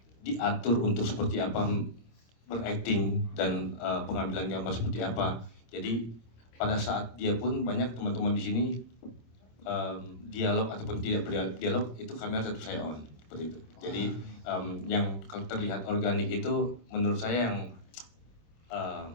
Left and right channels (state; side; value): late; right; 26 ms